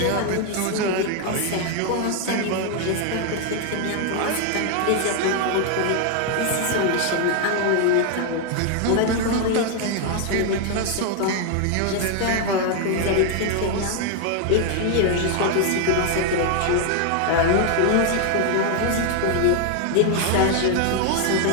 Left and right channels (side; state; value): both; different; correlation 0.00